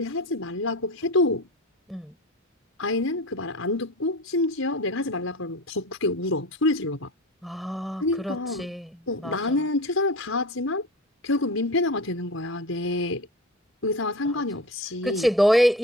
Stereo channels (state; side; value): normal; both; correlation 0.30